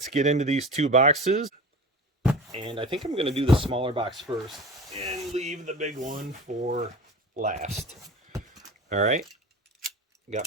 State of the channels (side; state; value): both; normal; correlation 0.35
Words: get into these 2 boxes. And I think I'm going to do the smaller box first and leave the big one for last. All right,